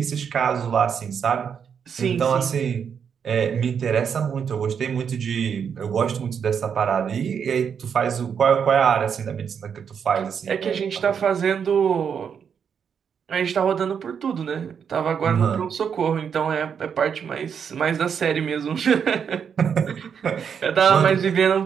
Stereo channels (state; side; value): quieter; left; 7.2 dB